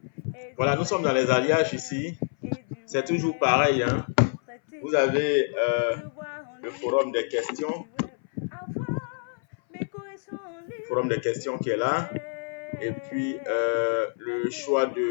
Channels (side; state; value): right; silent; 58 dB below the other